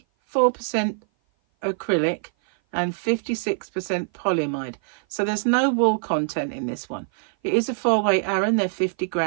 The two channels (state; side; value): silent; left; 56 dB below the other